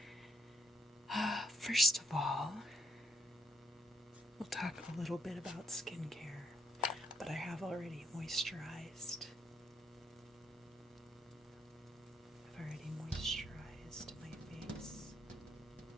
First of all, we'll talk a little bit about skincare, but I have already moisturized. I've already moisturized my face,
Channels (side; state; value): both; normal; correlation 0.73